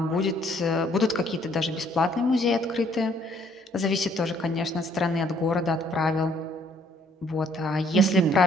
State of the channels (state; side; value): normal; both; correlation 0.64